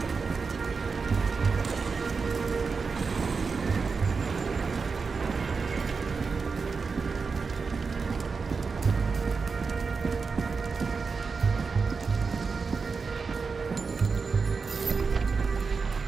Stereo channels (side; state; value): left; quieter; 4.9 dB